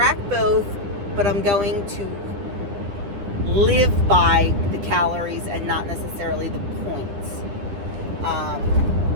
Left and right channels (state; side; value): late; left; 10 ms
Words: both, but I'm going to live by the calories and not necessarily the points.